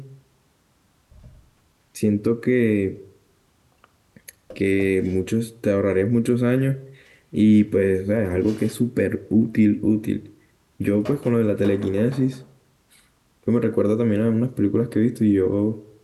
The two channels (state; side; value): identical; both; correlation 1.00